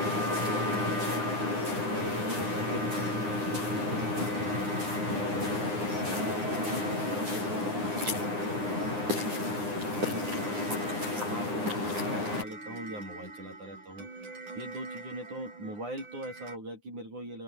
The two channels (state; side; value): late; left; 9.8 ms